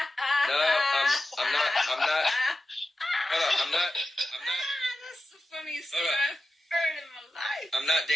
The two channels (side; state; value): both; normal; correlation 0.92